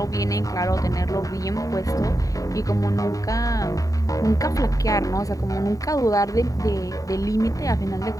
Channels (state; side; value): late; right; 0.16 ms